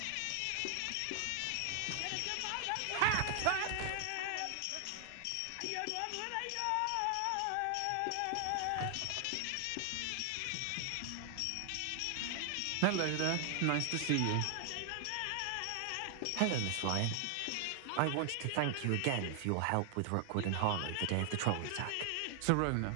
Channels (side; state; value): both; different; correlation 0.00